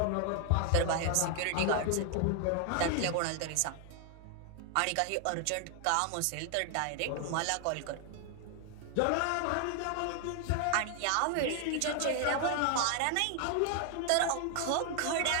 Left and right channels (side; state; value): both; different; correlation 0.00